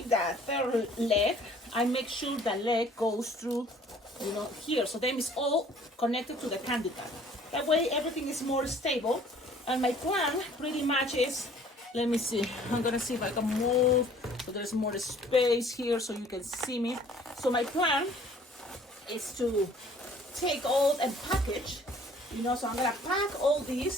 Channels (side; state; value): both; normal; correlation 0.55